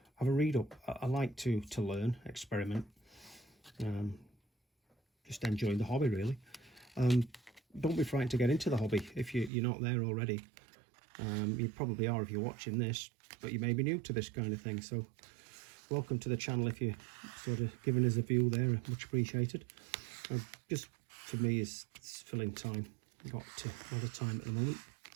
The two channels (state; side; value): drops out; left; at 9.5 s